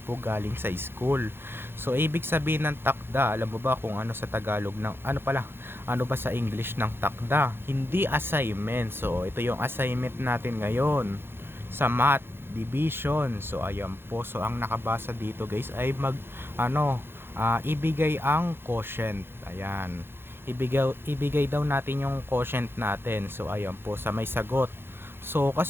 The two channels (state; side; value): late; left; 0.11 ms